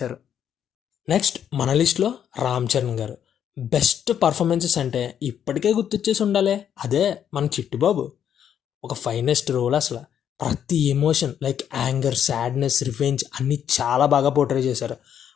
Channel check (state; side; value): quieter; right; 9.1 dB